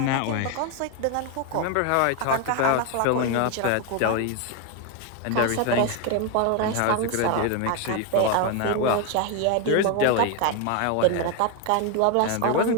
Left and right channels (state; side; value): different; both; correlation 0.01